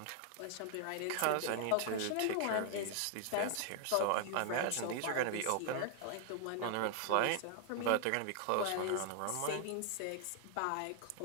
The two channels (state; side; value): different; both; correlation 0.00